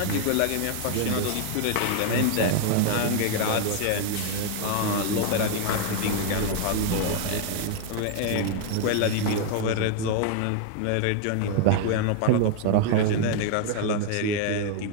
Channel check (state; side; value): different; both; correlation 0.00